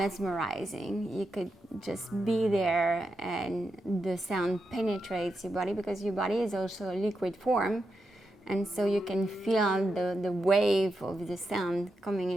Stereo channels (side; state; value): both; normal; correlation 0.86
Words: You could just be there and the sound penetrates your body, because your body is also a liquid form. And so you can feel the wave of the sound coming